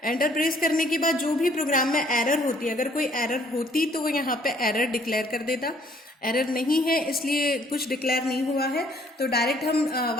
एंटर प्रेस करने के बाद जो भी प्रोग्राम में एरर होती है, अगर कोई एरर होती तो वो यहाँ पे एरर डिक्लेयर कर देता। एरर नहीं है इसलिए कुछ डिक्लेयर नहीं हुआ है, तो डायरेक्ट हम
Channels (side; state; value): both; normal; correlation 0.62